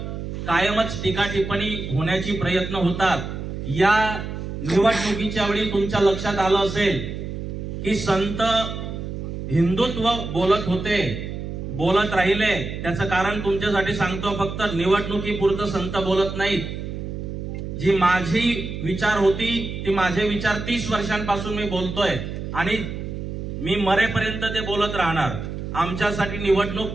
कायमच टीका टिप्पणी होण्याची प्रयत्न होतात। या निवडणुकीच्या वेळी तुमच्या लक्षात आलं असेल की संत हिंदुत्व बोलत होते, बोलत राहिले त्याचं कारण तुमच्यासाठी सांगतो, फक्त निवडणुकीपुरतं संत बोलत नाहीत. जी माझी विचार होती ती माझे विचार 30 वर्षांपासून मी बोलतोय आणि मी मरेपर्यंत ते बोलत राहणार. आमच्यासाठी निवडणूक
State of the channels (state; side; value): noise; right; hum, 6 dB below the sound